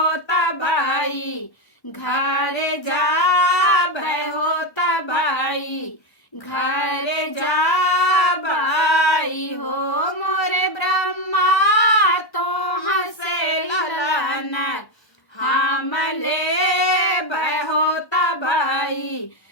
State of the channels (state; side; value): late; right; 1.3 ms